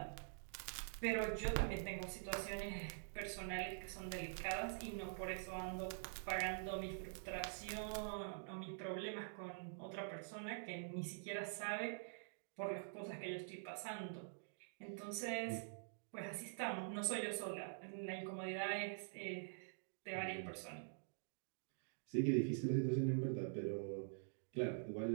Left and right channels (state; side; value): silent; left; digital silence